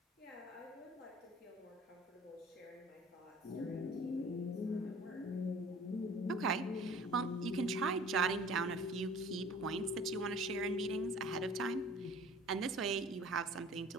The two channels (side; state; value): both; normal; correlation 0.48